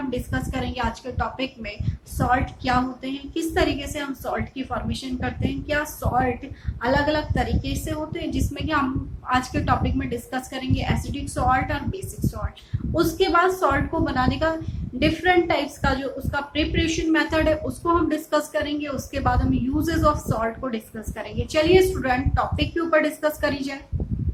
डिस्कस करेंगे आज के टॉपिक में सॉल्ट क्या होते हैं, किस तरीके से हम सॉल्ट की फॉर्मेशन करते हैं, क्या सॉल्ट अलग अलग तरीके से होते हैं, जिसमें कि हम आज के टॉपिक में डिस्कस करेंगे एसिडिक सॉल्ट और बेसिक सॉल्ट। उसके बाद सॉल्ट को बनाने का डिफरेंट टाइप्स का जो उसका प्रिपरेशन मेथड है उसको हम डिस्कस करेंगे। उसके बाद हम यूजेस ऑफ सॉल्ट को डिस्कस करेंगे। चलिए स्टूडेंट, टॉपिक के ऊपर डिस्कस करी जाए।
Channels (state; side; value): identical; both; correlation 1.00